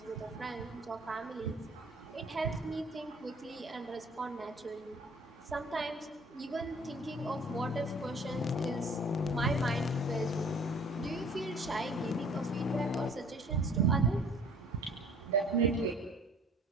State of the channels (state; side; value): normal; both; correlation 0.52